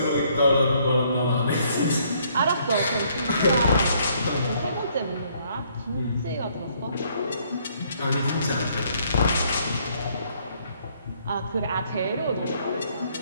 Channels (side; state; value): both; inverted; correlation -0.66